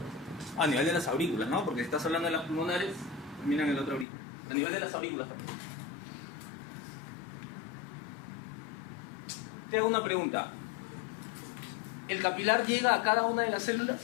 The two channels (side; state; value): right; drops out; at 4.0 s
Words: A nivel de las aurículas, ¿no? Porque estás hablando de las pulmonares, terminan en la otra aurícula. A nivel de las aurículas también. Te hago una pregunta. ¿El capilar llega a cada una de las células?